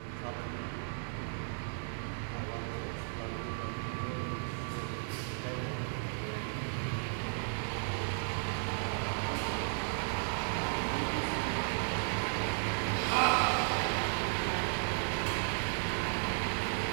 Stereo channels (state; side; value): silent; left; 55 dB below the other